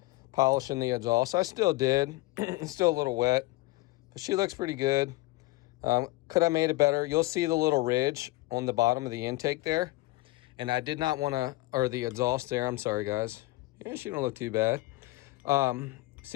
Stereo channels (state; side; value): quieter; right; 20.0 dB